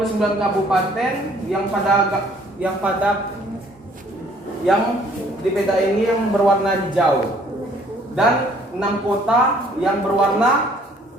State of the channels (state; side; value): normal; both; correlation 0.60